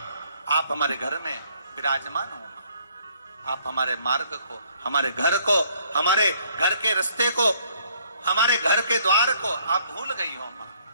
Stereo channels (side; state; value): both; inverted; correlation -0.64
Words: आप हमारे घर में विराजमान हो। आप हमारे मार्ग को, हमारे घर को, हमारे घर के रास्ते को, हमारे घर के द्वार को आप भूल गई हो। मां,